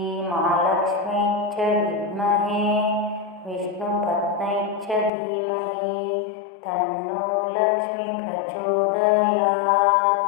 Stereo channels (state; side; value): drops out; right; at 5.1 s